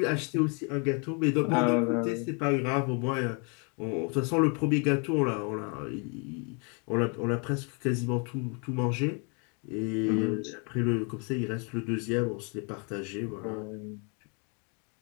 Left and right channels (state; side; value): quieter; right; 36.1 dB